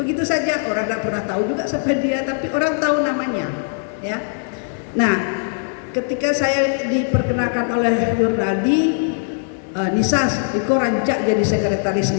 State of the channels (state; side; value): silent; right; digital silence